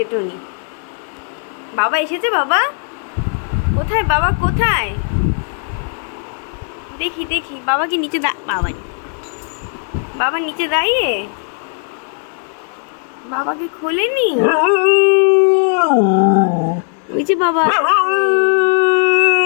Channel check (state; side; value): silent; right; 68 dB below the other